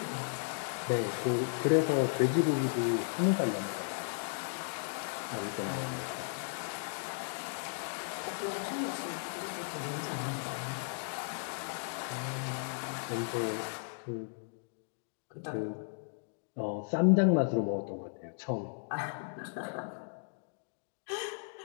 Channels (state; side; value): silent; right; digital silence